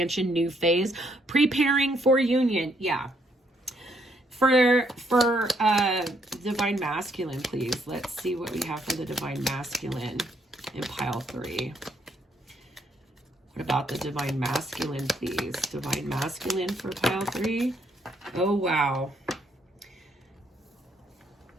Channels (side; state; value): both; normal; correlation 0.72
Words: new phase, preparing for union. Yeah. For divine masculine, please. Let's see what we have for the divine masculine in pile 3. What about the divine masculine, please? Divine masculine for pile 3. Oh, wow.